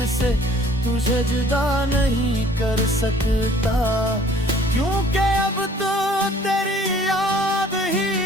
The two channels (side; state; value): both; normal; correlation 0.55